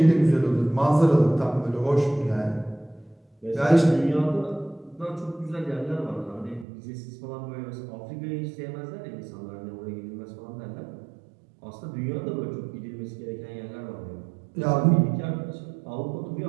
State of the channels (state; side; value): drops out; left; at 6.7 s